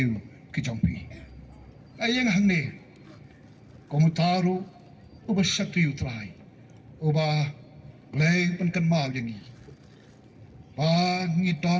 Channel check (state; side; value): identical; both; correlation 1.00